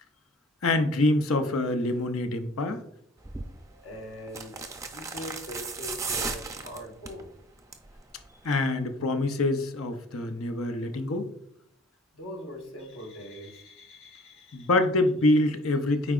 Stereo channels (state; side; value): normal; both; correlation 0.50